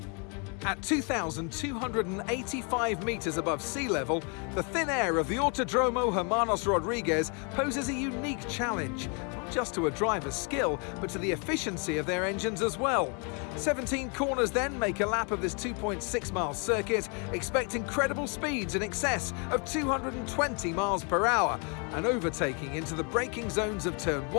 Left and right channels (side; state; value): right; quieter; 36.0 dB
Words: At 2,285 metres above sea level, the thin air of the Autódromo Hermanos Rodriguez poses a unique challenge, not just to a driver's skill, but to the efficiency of their engines as well. 17 corners then make a lap of this 2.6-mile circuit, expect incredible speeds in excess of 220 miles per hour, and overtaking into the braking zones of Turn